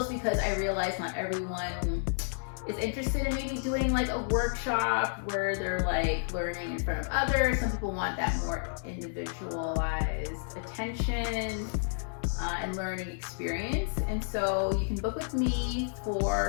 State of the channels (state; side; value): silent; right; digital silence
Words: because I realize not everyone is interested in maybe doing like a workshop where they're like learning in front of others. Some people want that more individualized attention and learning experience. And so you can book with me